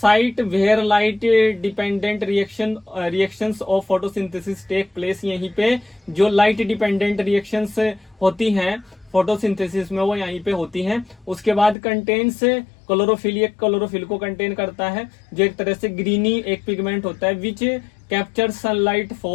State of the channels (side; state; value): right; drops out; at 11.8 s